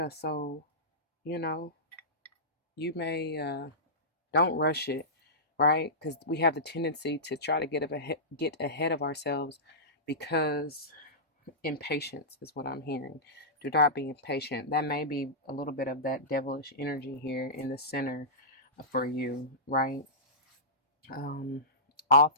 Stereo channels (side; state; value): both; normal; correlation -0.18